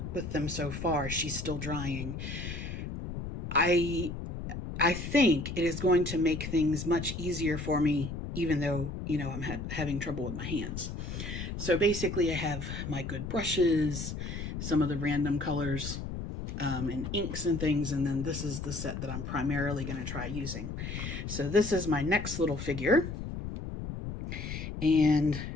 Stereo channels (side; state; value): left; noise; rumble, 6 dB below the sound